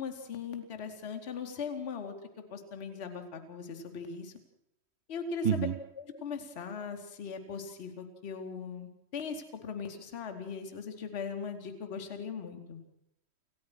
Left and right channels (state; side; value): late; right; 3.1 ms